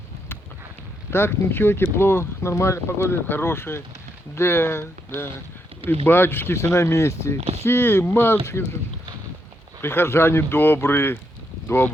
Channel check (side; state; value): both; normal; correlation 0.79